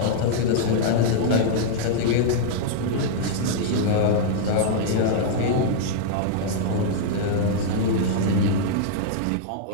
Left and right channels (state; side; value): different; both; correlation -0.01